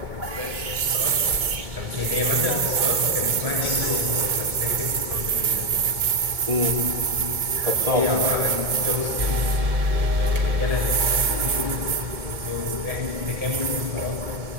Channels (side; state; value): left; late; 1.7 ms